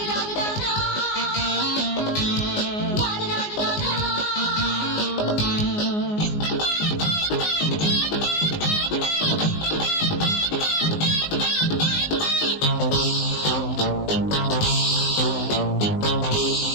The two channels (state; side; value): late; right; 19 ms